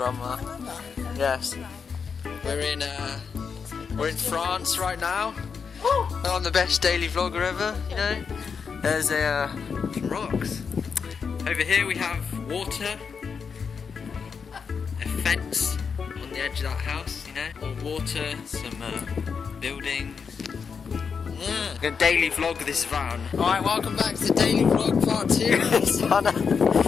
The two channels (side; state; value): right; quieter; 6.0 dB